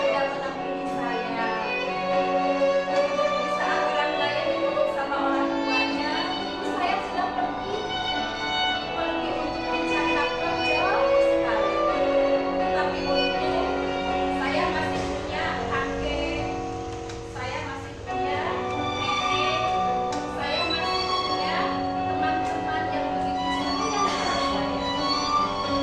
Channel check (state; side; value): identical; both; correlation 1.00